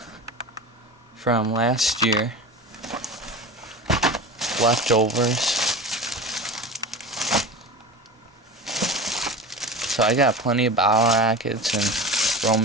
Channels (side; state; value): both; normal; correlation 0.31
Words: from last year, leftovers. So I got plenty of bow rockets and